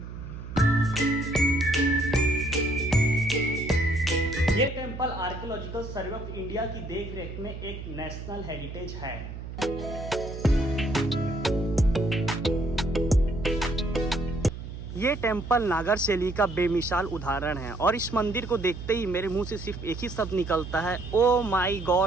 ये temple archaeological survey of India की देखरेख में एक नेशनल हेरिटेज है। ये टेंपल नागर शैली का बेमिसाल उदाहरण है और इस मंदिर को देखते ही मेरे मुंह से सिर्फ एक ही शब्द निकलता है, ओ माय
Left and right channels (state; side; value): noise; right; hum, 9 dB below the sound